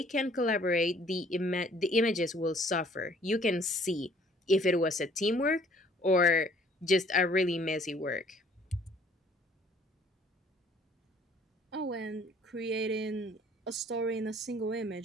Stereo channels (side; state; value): both; normal; correlation 0.58